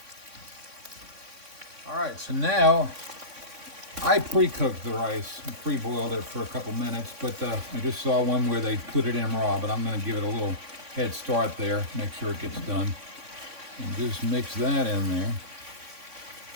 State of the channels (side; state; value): left; late; 3.6 ms